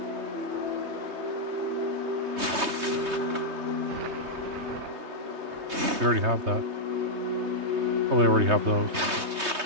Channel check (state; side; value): late; left; 3.2 ms